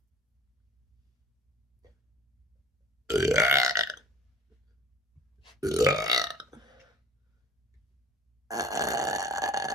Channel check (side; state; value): both; normal; correlation 0.47